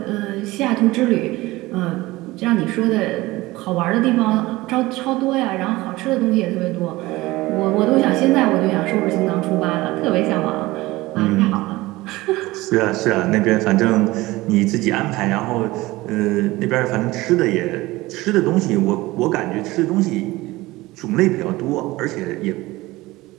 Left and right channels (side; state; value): left; quieter; 19.5 dB